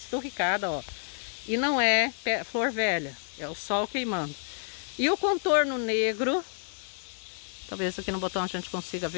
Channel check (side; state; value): right; silent; digital silence